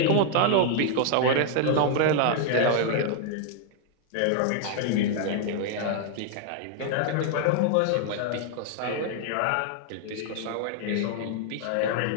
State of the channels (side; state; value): both; different; correlation 0.00